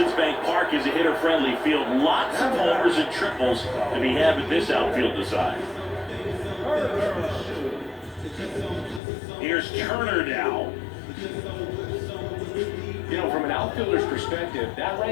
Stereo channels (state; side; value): drops out; right; at 9.0 s